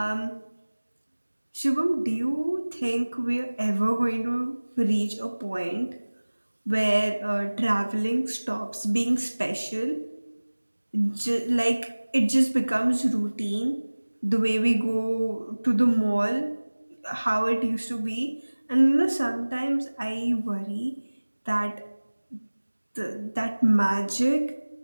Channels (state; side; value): inverted; both; correlation -1.00